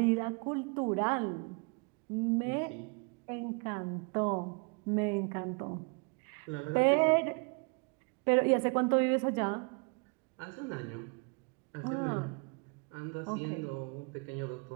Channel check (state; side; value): quieter; left; 33.8 dB